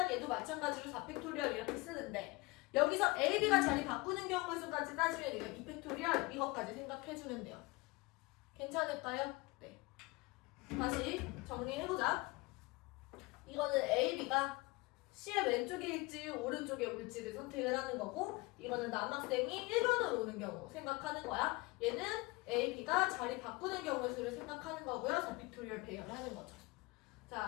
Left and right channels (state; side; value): quieter; right; 23.9 dB